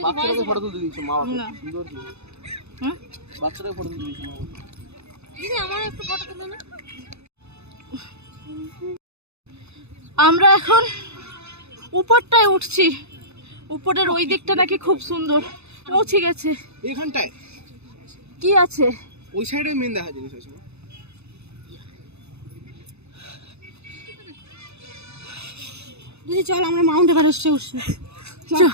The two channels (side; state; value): left; late; 0.80 ms